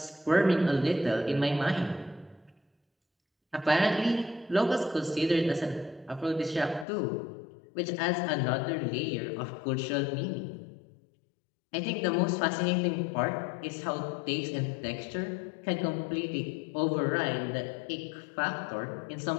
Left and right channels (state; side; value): drops out; right; at 6.9 s